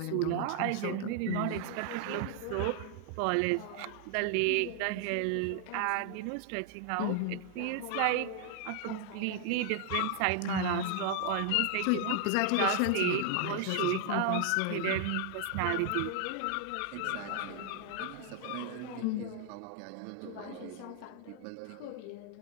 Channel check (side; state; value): both; different; correlation 0.00